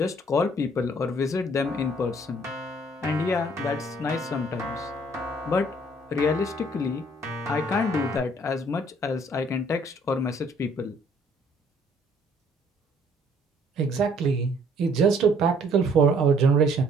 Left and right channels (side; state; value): both; normal; correlation 0.61